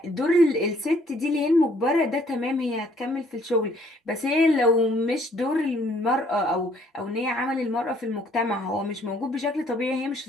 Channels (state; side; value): normal; both; correlation 0.63